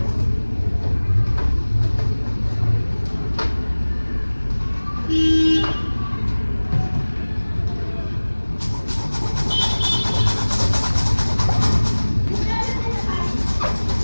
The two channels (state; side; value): inverted; both; correlation -1.00